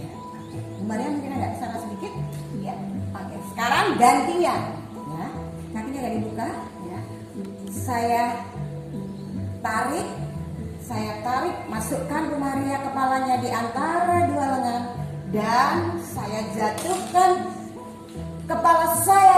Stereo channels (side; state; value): both; identical; correlation 1.00